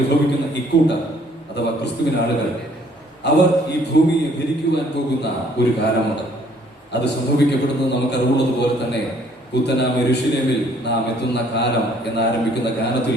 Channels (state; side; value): normal; both; correlation 0.61